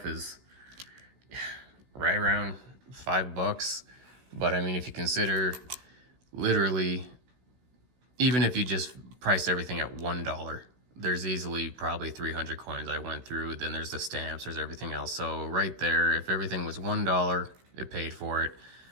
is right around $5. But I mean, if you consider literally, even if you just priced everything at $1, there's easily probably 300 coins I went through. Then there's the stamps, there's everything else. So right there, if everything was $1, it paid for it.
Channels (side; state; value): left; late; 16 ms